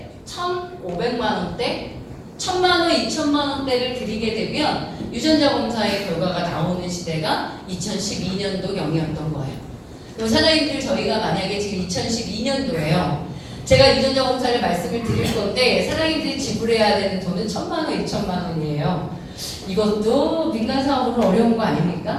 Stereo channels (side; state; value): both; identical; correlation 1.00